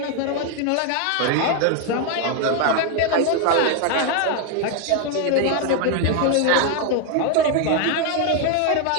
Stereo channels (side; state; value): both; different; correlation 0.01